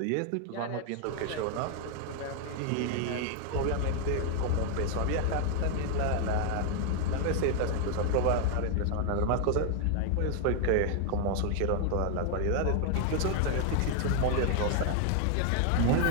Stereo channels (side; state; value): both; different; correlation 0.00